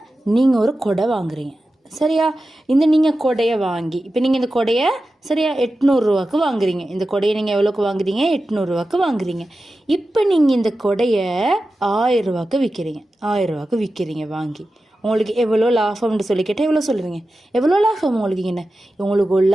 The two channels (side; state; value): both; normal; correlation 0.93